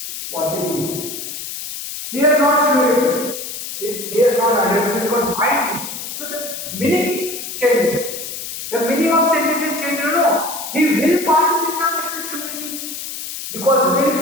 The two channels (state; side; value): noise; left; hiss, 8 dB below the sound